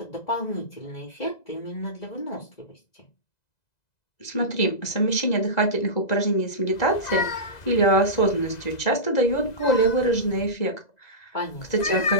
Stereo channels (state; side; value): late; right; 2.0 ms